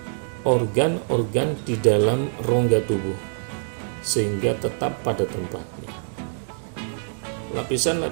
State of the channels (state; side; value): silent; left; digital silence